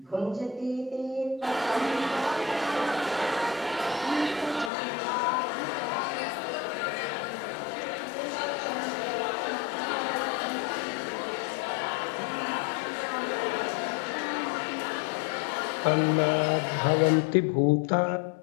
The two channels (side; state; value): right; drops out; at 4.7 s